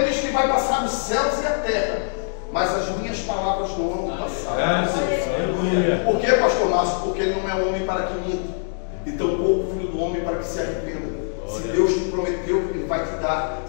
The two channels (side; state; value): right; silent; digital silence